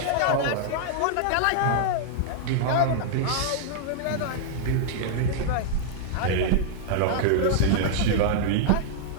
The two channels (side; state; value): both; different; correlation -0.01